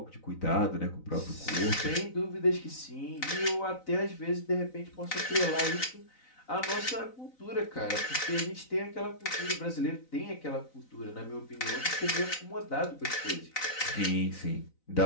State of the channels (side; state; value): right; late; 3.9 ms